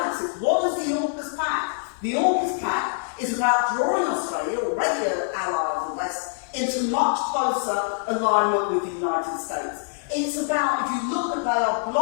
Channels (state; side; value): silent; right; 58 dB below the other